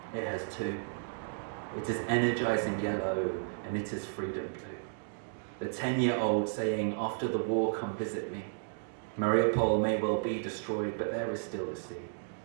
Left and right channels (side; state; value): left; silent; digital silence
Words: it has two. It is energising yellow, and it is freedom blue. The 10-year-old saying, after the war, come visit me. Mariupol may well be destroyed, but there is still the sea.